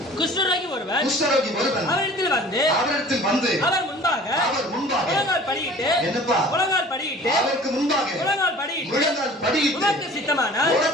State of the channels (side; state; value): both; normal; correlation 0.46